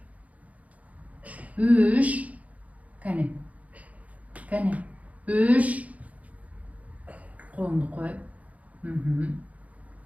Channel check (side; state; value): left; late; 0.070 ms